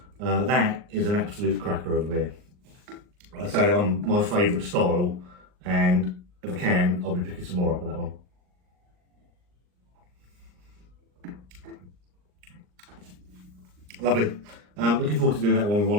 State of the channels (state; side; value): late; left; 39 ms